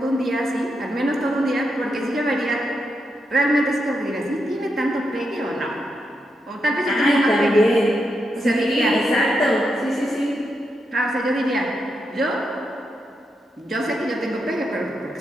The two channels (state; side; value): normal; both; correlation 0.84